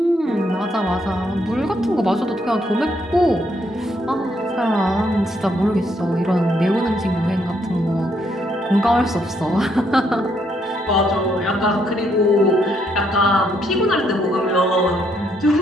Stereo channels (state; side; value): normal; both; correlation 0.73